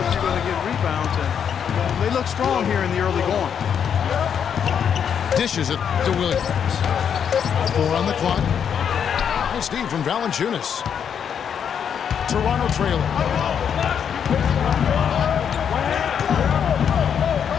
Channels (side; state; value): right; quieter; 7.9 dB